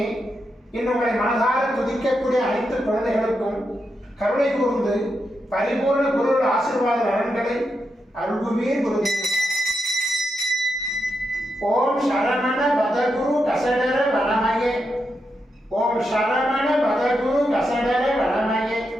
இன்னுங்களை மனதார துதிக்கக்கூடிய அனைத்து குழந்தைகளுக்கும் கருணை கூர்ந்து பரிபூர்ண குரு ஆசீர்வாத நலன்களை அருள்குவீர் குருதேவா. ஓம் சரவண பதகுரு கசடர வனமயே, ஓம் சரவண பதகுரு கசடர வனமயே,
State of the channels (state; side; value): normal; both; correlation 0.85